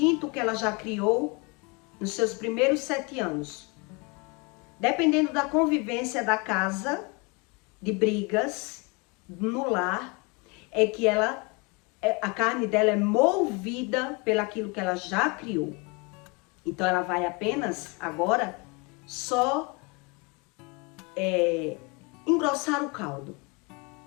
que ela já criou nos seus primeiros 7 anos. Dependendo da convivência da casa, de brigas, no lar, é que a carne dela é movida pelaquilo que ela já criou. Então ela vai apenas agora só engrossar o caldo.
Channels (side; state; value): right; quieter; 29.4 dB